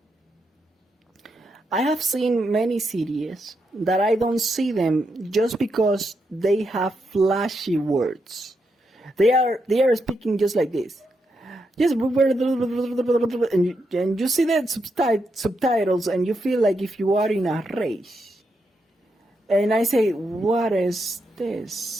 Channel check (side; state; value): both; normal; correlation 0.82